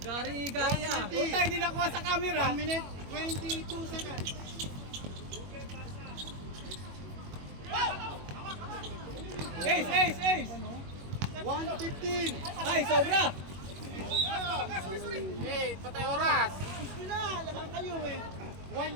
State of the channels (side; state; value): left; late; 21 ms